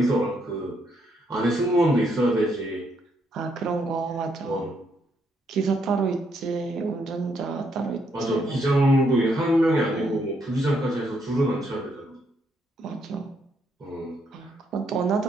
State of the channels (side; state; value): both; normal; correlation 0.75